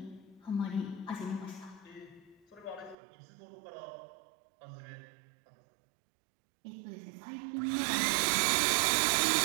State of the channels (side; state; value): left; drops out; at 3.0 s